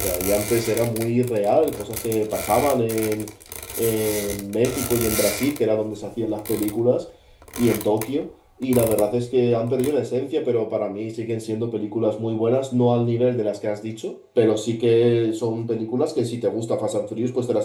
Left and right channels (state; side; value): identical; both; correlation 1.00